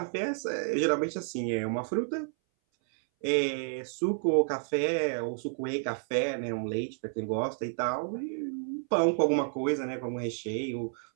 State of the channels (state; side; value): silent; left; 57 dB below the other